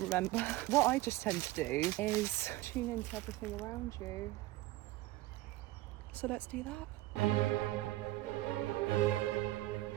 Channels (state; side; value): quieter; left; 17.6 dB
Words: What I just tend to do is tune into everything around you. So let's do that.